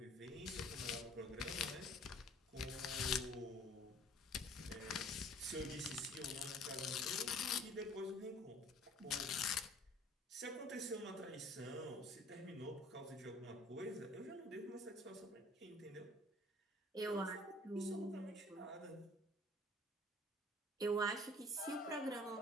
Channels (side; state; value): both; normal; correlation 0.52